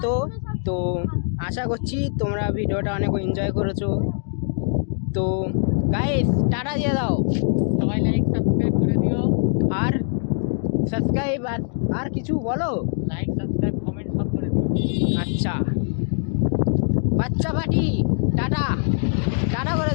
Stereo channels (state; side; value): silent; right; 59 dB below the other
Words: তো আশা করছি তোমরা ভিডিওটা অনেক এনজয় করেছো। তো গাইস, টাটা দিয়ে দাও, সবাই লাইক সাবস্ক্রাইব করে দিও। আর সাবস্ক্রাইব আর কিছু বলো, লাইক সাবস্ক্রাইব কমেন্ট সব করে দিও। আচ্ছা বাচ্চা পাটি, টাটা টাটা করে